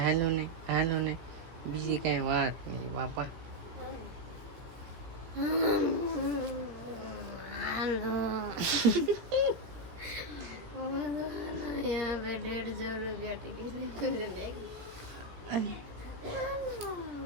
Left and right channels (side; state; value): left; late; 17 ms